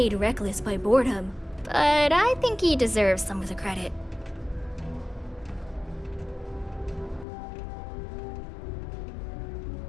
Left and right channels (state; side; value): drops out; right; at 7.2 s